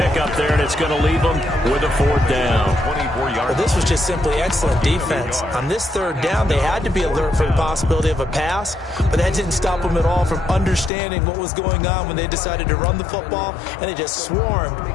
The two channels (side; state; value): right; drops out; at 10.9 s